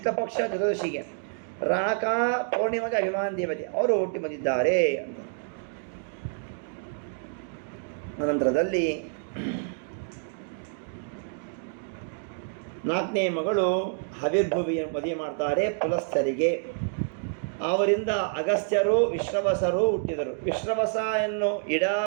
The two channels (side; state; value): left; silent; digital silence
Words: ಚತುರ್ದಶಿಗೆ, ರಾಕ ಪೌರ್ಣಿಮೆಗೆ ಅಭಿಮಾನಿ ದೇವತೆ. ಅವರು ಹುಟ್ಟಿ ಬಂದಿದ್ದಾರೆ ಅಂತ. ನಂತರದಲ್ಲಿ ನಾಲ್ಕನೇ ಮಗಳು ಹವಿರ್ಭುವಿಯ ಮದುವೆ ಮಾಡ್ತಾರೆ ಪುಲಸ್ಥರಿಗೆ. ಅವರಿಂದ ಅಗಸ್ತ್ಯರು, ವಿಶ್ರವಸರು ಹುಟ್ಟಿದರು. ವಿಶ್ರವಸ ಎನ್ನು ಇಡ